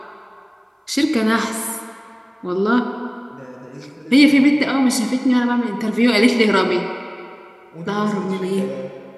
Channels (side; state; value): both; identical; correlation 1.00